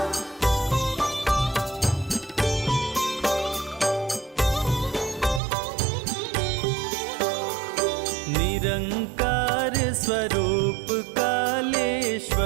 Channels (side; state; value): left; drops out; at 5.4 s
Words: निरंकार स्वरूप काले